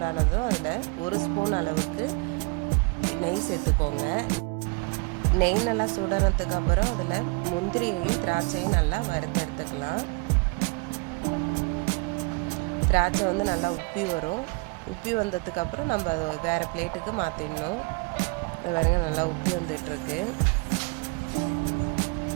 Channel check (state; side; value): quieter; left; 30.1 dB